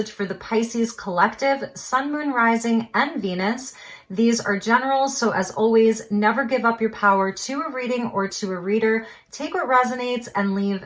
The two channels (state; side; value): identical; both; correlation 1.00